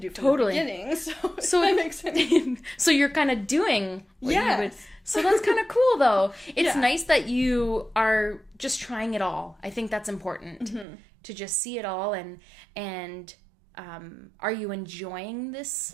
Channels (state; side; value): drops out; left; at 10.9 s